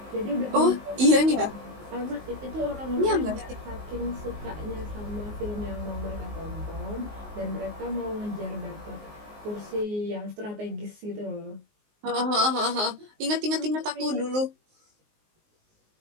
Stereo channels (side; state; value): left; late; 19 ms